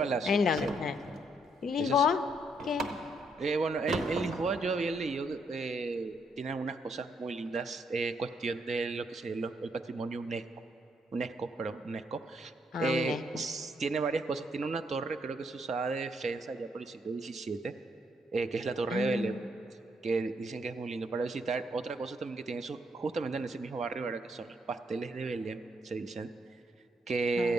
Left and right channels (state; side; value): normal; both; correlation 0.74